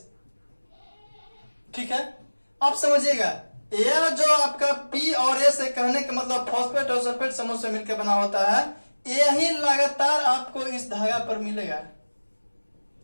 ठीक है। अब समझिएगा, यह जो आपका पी और एस है, कहने का मतलब फॉस्फेट और सल्फेट समूह से मिलकर बना होता है। यही लगातार आपको इस धागा पर मिलेगा,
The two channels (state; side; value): inverted; both; correlation -1.00